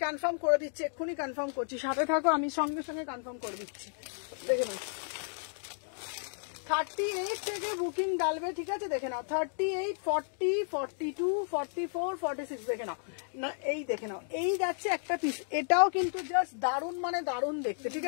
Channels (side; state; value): right; silent; digital silence